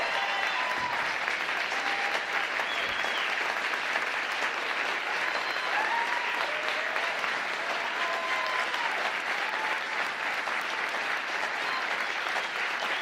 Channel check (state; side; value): identical; both; correlation 1.00